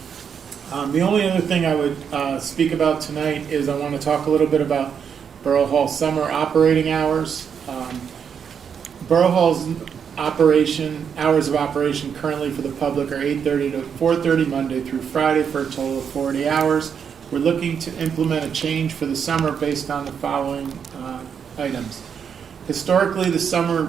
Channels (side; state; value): left; quieter; 7.3 dB